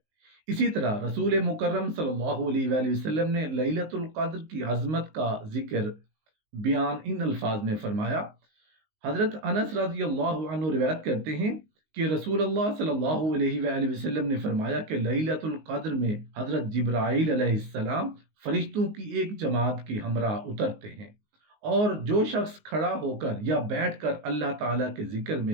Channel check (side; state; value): left; late; 19 ms